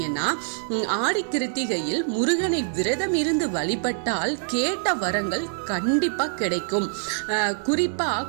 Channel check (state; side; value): silent; left; digital silence